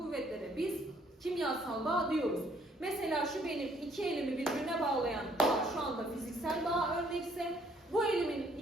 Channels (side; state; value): both; normal; correlation 0.64